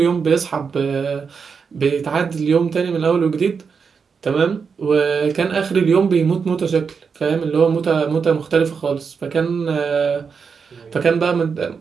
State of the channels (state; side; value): quieter; left; 5.8 dB